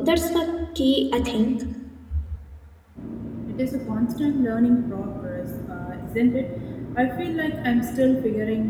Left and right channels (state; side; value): identical; both; correlation 1.00